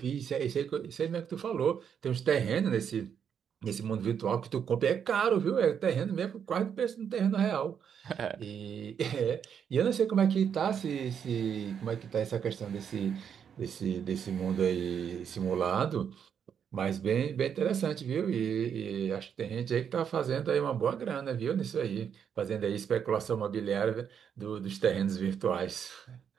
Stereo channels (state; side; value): quieter; left; 7.8 dB